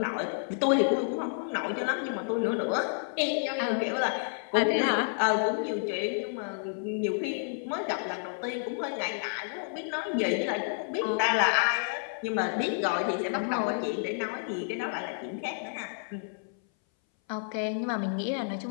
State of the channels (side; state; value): right; silent; 58 dB below the other